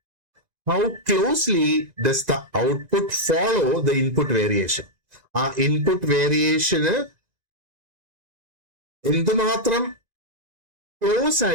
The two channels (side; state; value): left; late; 1.9 ms